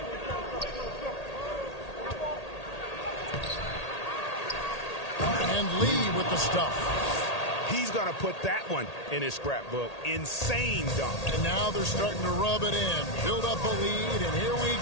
And Lee with the stuff. He's going to put that one in his scrapbook. Insane dunk. And now they're starting to rub it in. Build up a lead, and here we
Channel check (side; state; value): right; late; 1.8 ms